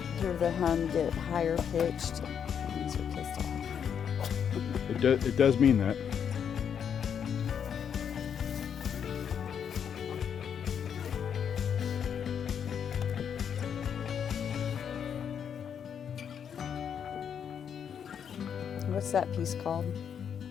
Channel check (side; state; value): right; quieter; 7.9 dB